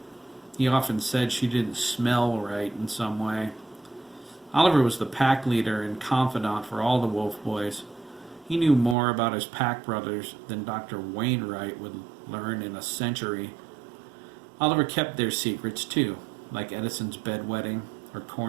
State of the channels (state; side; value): drops out; left; at 9.0 s